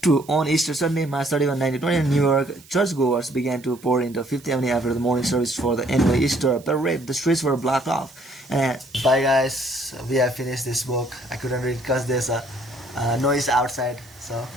On Easter Sunday, March 31, 1920, New York churchgoers began to pour into Fifth Avenue after the morning service for the annual Easter parade. The streets were blocked off. Bye guys, we have finished this book. I couldn't read because there's a noise outside. So,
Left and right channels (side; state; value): right; noise; hiss, 24 dB below the sound